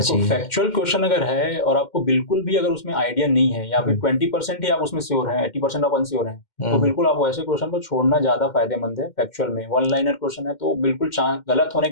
फैक्चुअल क्वेश्चन अगर है और आपको बिल्कुल भी अगर उसमें आइडिया नहीं है, या फिर 20% ही आप उसमें श्योर हैं, 80% आप अनश्योर हैं, तो बिल्कुल आप वैसे क्वेश्चन को छोड़ना ज्यादा फायदेमंद है। फैक्चुअल में 1 लाइनर क्वेश्चन है तो बिल्कुल गलत होने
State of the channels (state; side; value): late; right; 2.1 ms